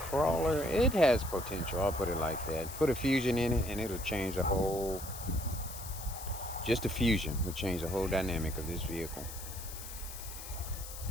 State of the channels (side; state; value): left; noise; hiss, 11 dB below the sound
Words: it has potential. I'll put it like that. Put a Fusion in it and it'll change the whole... Just a Fusion will change the whole dynamic of this vehicle.